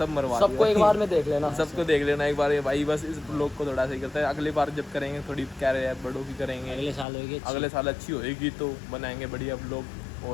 मरवा सबको एक बार में देख लेना सबको देख लेना एक बार भाई बस इस ब्लॉग को थोड़ा सही करता है अगली बार जब करेंगे थोड़ी क्या रहे बड़ों की करेंगे अगले साल अच्छी होएगी तो बनाएंगे बढ़िया ब्लॉग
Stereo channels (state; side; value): drops out; right; at 7.1 s